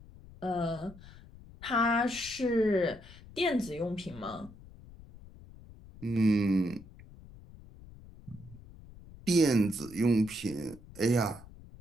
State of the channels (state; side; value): noise; left; rumble, 19 dB below the sound